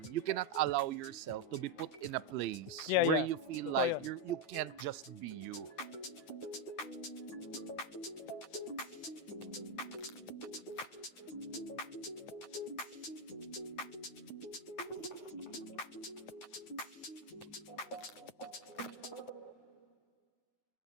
you cannot allow yourself to be put in a place Yeah, where yeah. you feel Totoo like yun. you can't just be you.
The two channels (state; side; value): late; right; 9.4 ms